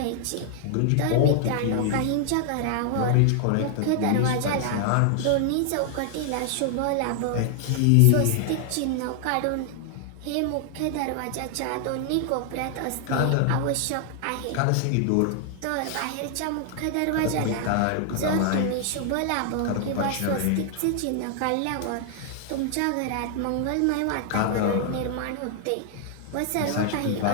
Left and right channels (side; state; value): both; different; correlation 0.00